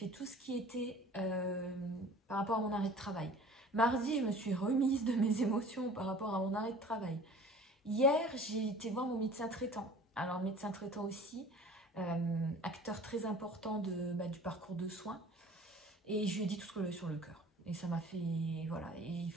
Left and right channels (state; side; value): normal; both; correlation 0.45